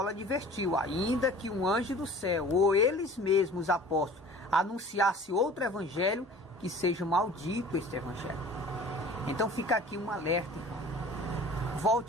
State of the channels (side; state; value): both; normal; correlation 0.45